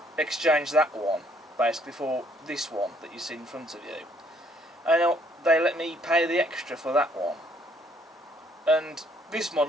exchange that one basically for this one that you see in front of you. And they let me pay the extra for that one. And this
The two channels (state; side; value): normal; both; correlation 0.66